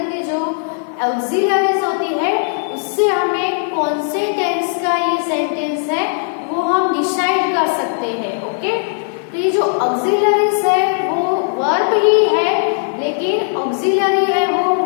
के जो ऑक्सिलरीज होती है उससे हमें कौन से टेंस का ये सेंटेंस है वो हम डिसाइड कर सकते हैं. ओके, तो ये जो ऑक्सिलरीज है वो वर्ब ही है, लेकिन ऑक्सिलरी है वो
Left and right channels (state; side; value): silent; right; 56 dB below the other